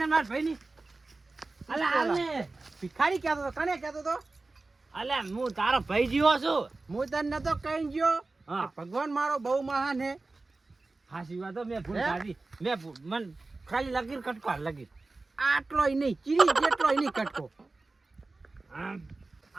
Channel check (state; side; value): quieter; left; 3.4 dB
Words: માર ભાઈ ની હાલે ભિખારી કહેતો તો કને કહેતો તો અલે હું તારો ભાઈ જીવો છું હું તને નતો કઈ ગયો હા. કે ભગવાન મારો બહુ મહાન હે હાસી વાત હો, મેં ભૂલ હે? કાઢી મન ખાલી લગીર કટકો લગીર આટલોય નહીં ચીરી જેટલોય નહીં કટકો